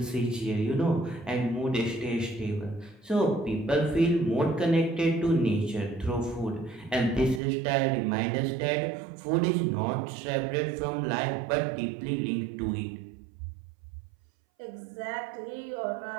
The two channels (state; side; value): drops out; left; at 7.4 s